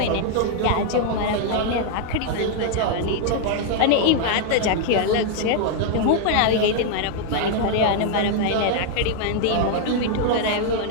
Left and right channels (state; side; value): different; both; correlation 0.00